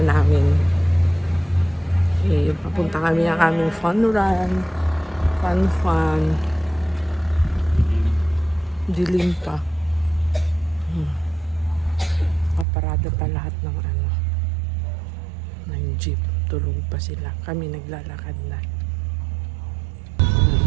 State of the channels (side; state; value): left; drops out; at 12.7 s